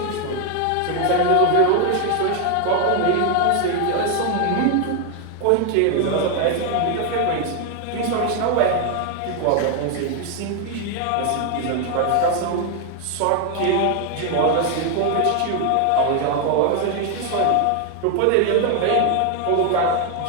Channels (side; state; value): both; different; correlation 0.01